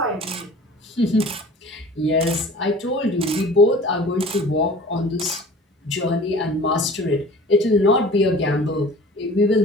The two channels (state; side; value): normal; both; correlation 0.44